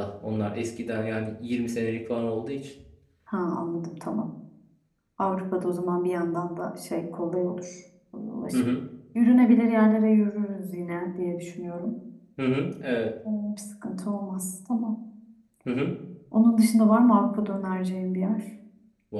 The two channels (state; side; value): identical; both; correlation 1.00